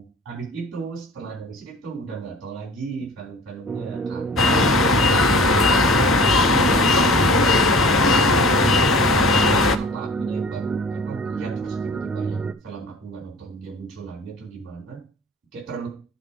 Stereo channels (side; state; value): both; normal; correlation 0.44